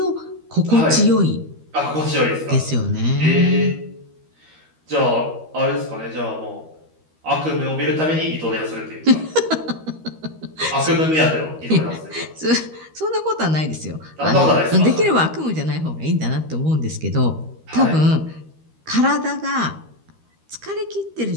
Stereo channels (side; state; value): left; late; 13 ms